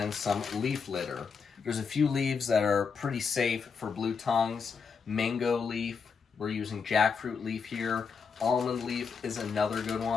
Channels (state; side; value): quieter; right; 5.7 dB